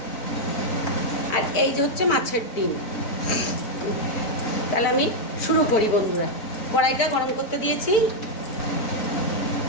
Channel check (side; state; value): right; late; 4.5 ms